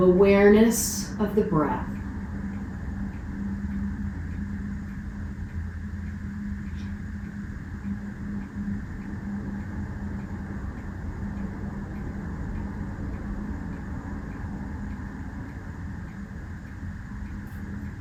awareness of the breath.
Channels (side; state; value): both; identical; correlation 1.00